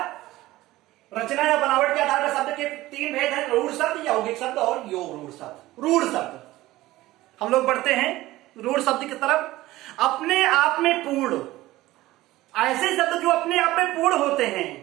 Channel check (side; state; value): left; quieter; 17.2 dB